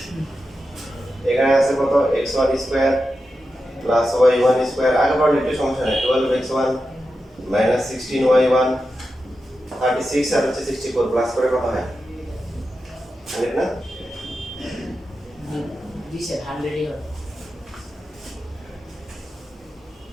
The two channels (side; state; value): both; normal; correlation 0.90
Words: এখানে আছে কত x1 square plus y1 square আগে পড়লে একটু সমস্যা নেই 12x1 মাইনাস 16y1 36 আর হচ্ছে 64 প্লাস করে কত হয় 100 না দিছে 100 এর